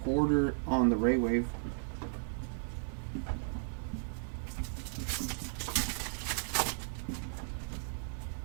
Porter on the Ray Wave.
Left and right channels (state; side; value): silent; left; digital silence